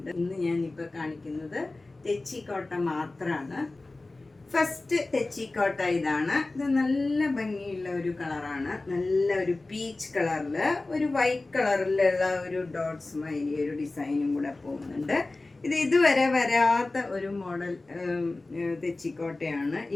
ഇന്ന് ഞാനിപ്പോൾ കാണിക്കുന്നത് തെച്ചിക്കോട്ട മാത്രമാണ്. ഫസ്റ്റ് തെച്ചിക്കോട്ട ഇതാണ്. ഇത് നല്ല ഭംഗിയുള്ള ഒരു കളറാണ്. നല്ല ഒരു പീച്ച് കളറിൽ ഒരു വൈറ്റ് കളറിലുള്ള ഒരു ഡോട്ട്സ് മാതിരി ഒരു ഡിസൈനും കൂടെ പോകുന്നുണ്ട്. ഇത് ഇതുവരെ വരാത്ത ഒരു മോഡൽ തെച്ചിക്കോട്ടയാണ്.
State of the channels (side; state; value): right; quieter; 3.1 dB